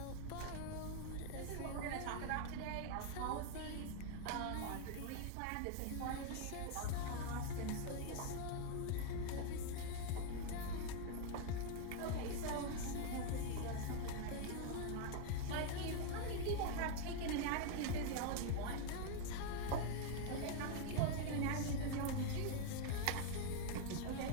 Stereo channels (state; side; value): different; both; correlation 0.00